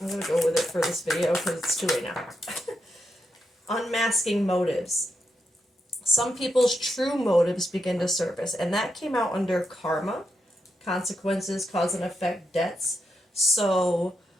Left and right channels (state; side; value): normal; both; correlation 0.83